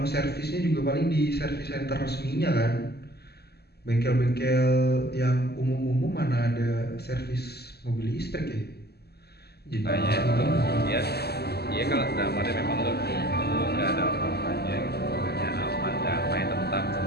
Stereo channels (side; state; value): right; late; 0.47 ms